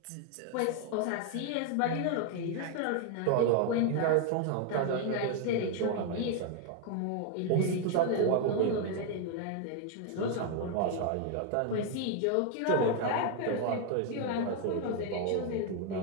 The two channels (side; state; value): both; different; correlation 0.01